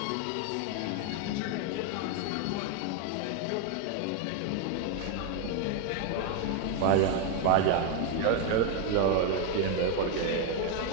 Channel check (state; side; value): different; both; correlation 0.01